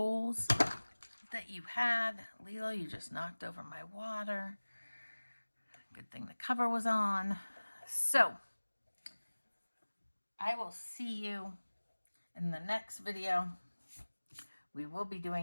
that you had. Lilo, you just knocked over my water. Good thing the cover was on. So I will see you in the next video. We will be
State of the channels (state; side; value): inverted; both; correlation -1.00